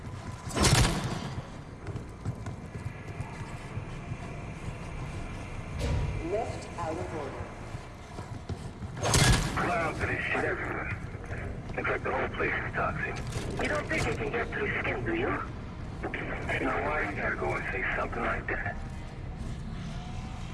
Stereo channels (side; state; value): both; identical; correlation 1.00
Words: Left out of order. Clouds of this shit everywhere. Looks like the whole place is toxic. You don't think it can get through skin, do you? You know why you gotta go and say something like that?